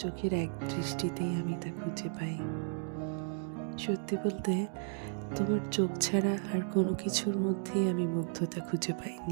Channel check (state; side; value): silent; left; 55 dB below the other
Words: চোখের এক দৃষ্টিতেই আমি তা খুঁজে পাই। সত্যি বলতে, তোমার চোখ ছাড়া আর কোনো কিছুর মধ্যেই আমি মুগ্ধতা খুঁজে